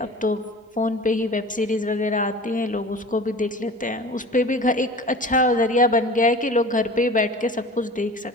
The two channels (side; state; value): both; normal; correlation 0.39